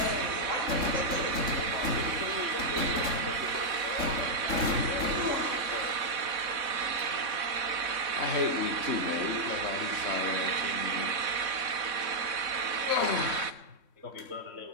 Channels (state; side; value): late; left; 3.6 ms